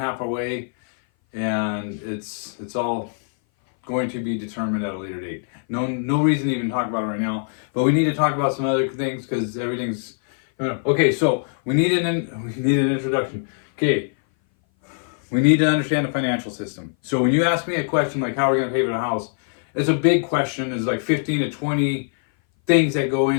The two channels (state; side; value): silent; right; 59 dB below the other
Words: away, and it's all going to be determined at a later date. No reason to even talk about it right now, but we need to talk about some other things because everything's okay. So we need an introduction. Okay, we need to understand the financial system. So when you ask me a question like how are we going to pay for the house, it's a big question. There's like 15 to 20 things that go